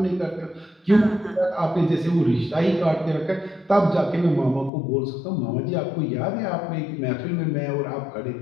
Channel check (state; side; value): drops out; right; at 4.7 s